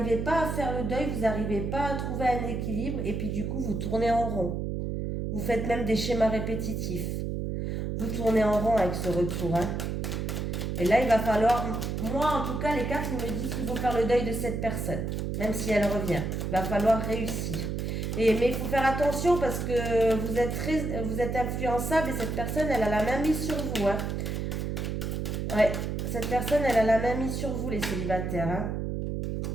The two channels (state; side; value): noise; right; hum, 2 dB below the sound